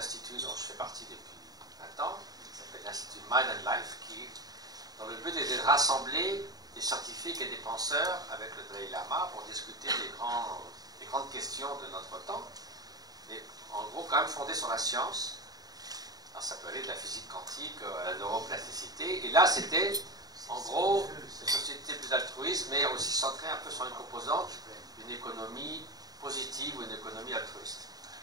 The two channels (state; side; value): late; left; 0.18 ms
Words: dont je fais partie depuis 20 ans, qui s'appelle l'Institut Mind and Life, dont le but était de rassembler des scientifiques et des penseurs avec le Dalai Lama pour discuter des grandes questions de notre temps, mais en gros quand même fondées sur la science. Alors, ça peut aller de la physique quantique à la neuroplasticité, et là c'était en gros une société plus altruiste, mais aussi centrée un peu sur une composante d'une économie positive ou une économie altruiste.